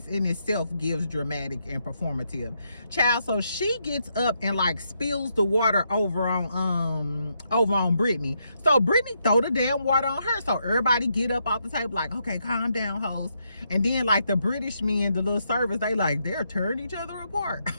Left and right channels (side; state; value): both; inverted; correlation -0.79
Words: in itself gives dramatic and performative, child. So she gets up and like spills the water over on Brittany. So Brittany throw the damn water on her. So everybody get up off the table like, okay, calm down, hoes. And then like the British men, the little servers, they're tearing each other apart.